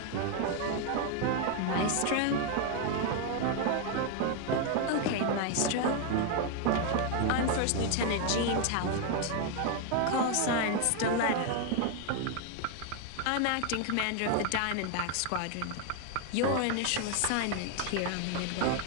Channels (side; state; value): both; different; correlation 0.01